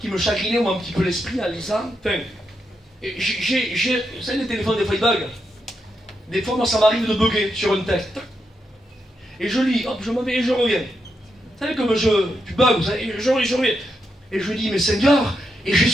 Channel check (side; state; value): both; normal; correlation 0.83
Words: chagrinait, moi, un petit peu l'esprit en lisant. Enfin, vous savez, les téléphones, des fois, ils bug. Des fois, moi, ça m'arrive de bugger sur un texte. Et je lis, hop, je m'en vais et je reviens. Vous savez, comme tu bugs, vous savez, je reviens. Et je dis, mais Seigneur, et